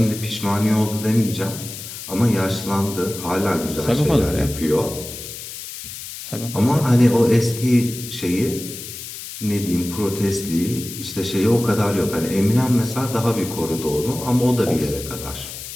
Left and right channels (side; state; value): left; noise; hiss, 11 dB below the sound